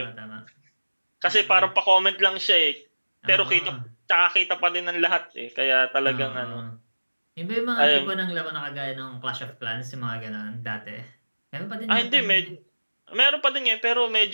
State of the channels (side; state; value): both; inverted; correlation -1.00